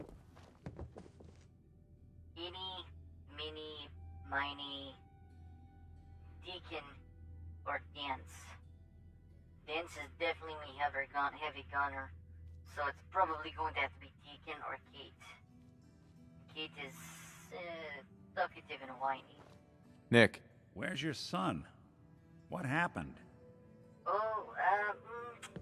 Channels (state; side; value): identical; both; correlation 1.00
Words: Eeny, mini, miny, Deacon, or Dance. Dance is definitely heavy gunner, so it's probably going to have to be Deacon or Kate. Kate is talkative and whiny. Nick. Where's your son? What happened? Oh,